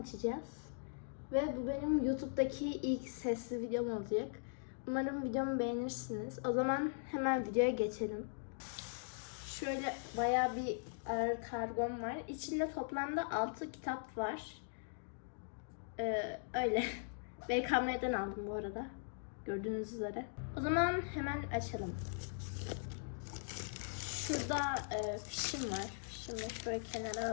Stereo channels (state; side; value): silent; right; digital silence